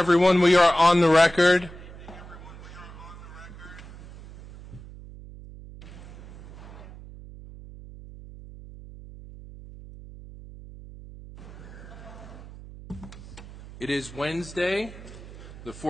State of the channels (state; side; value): noise; right; hum, 16 dB below the sound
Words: We are on the record. It is Wednesday, the